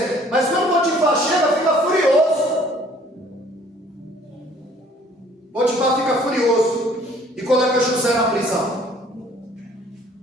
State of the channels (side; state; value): both; normal; correlation 0.57